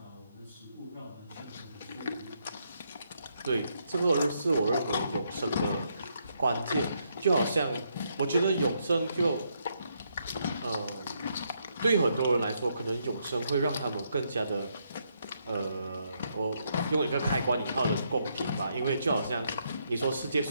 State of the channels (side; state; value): both; inverted; correlation -0.76